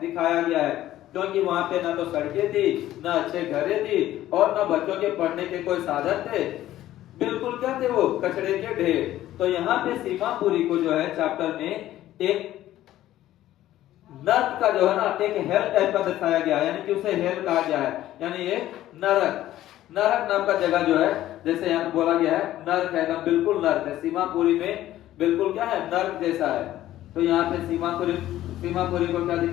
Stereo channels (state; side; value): quieter; right; 13.8 dB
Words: गया है, क्योंकि वहां पे ना तो सड़कें थी, ना अच्छे घरें थी और ना बच्चों के पढ़ने के कोई साधन थे, बिल्कुल क्या थे वो? कचड़े के ढेर। तो यहाँ पे सीमापुरी को जो है चैप्टर में एक नर्क का जो है ना एक हेल टाइप का दर्शाया गया है, यानी कि उसे हेल कहा गया है, यानी ये नरक नाम का जगह जो है, जैसे यहाँ बोला गया है नर्क है, बिल्कुल नर्क है। सीमापुरी में बिल्कुल क्या है? नर्क जैसा है। तो यहाँ पे सीमापुरी को क्या